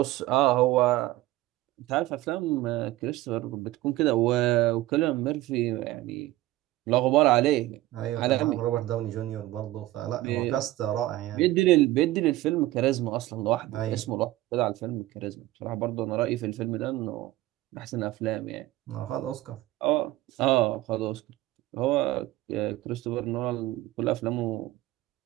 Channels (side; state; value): left; quieter; 16.7 dB